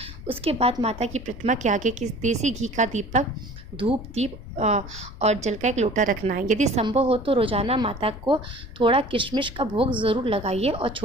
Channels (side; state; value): left; noise; rumble, 13 dB below the sound